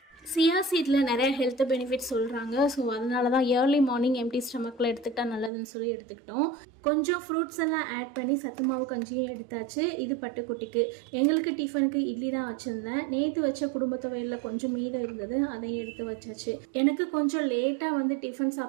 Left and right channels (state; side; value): drops out; left; at 5.5 s